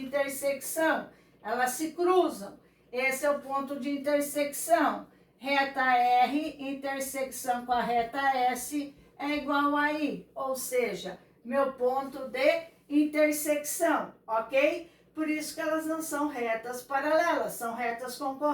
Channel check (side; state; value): both; identical; correlation 1.00